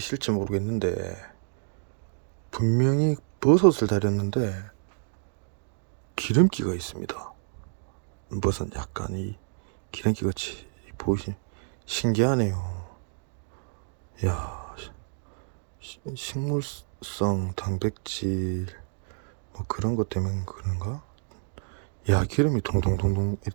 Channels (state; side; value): silent; left; digital silence